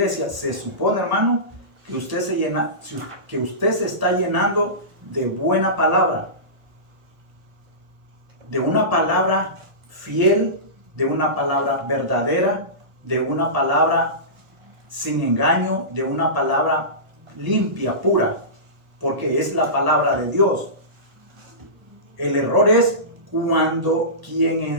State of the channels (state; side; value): late; left; 1.1 ms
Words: se supone, hermano, que usted se está llenando de buena palabra, de una palabra fiel, de una palabra verdadera, de una palabra sin engaño, de una palabra limpia, pura, porque es la palabra de Dios. El error es cuando quien